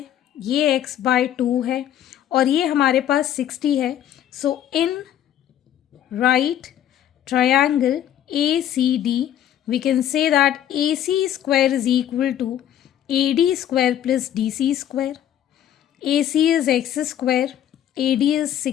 ये x/2 है और ये हमारे पास 60 है, so in right triangle ACD we can say that AC square is equal to AD square plus DC square. AC is x square, AD is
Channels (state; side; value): quieter; right; 10.7 dB